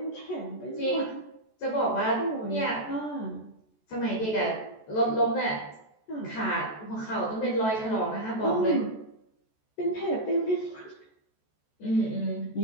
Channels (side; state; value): right; late; 14 ms